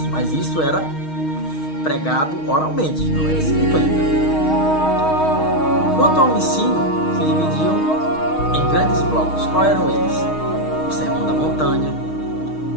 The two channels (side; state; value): right; late; 6.4 ms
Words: Mas isso era pregado oralmente, não era escrito ainda. Quanto ao ensino, se dividiam em grandes blocos. Quais eram eles? O Sermão da Montanha,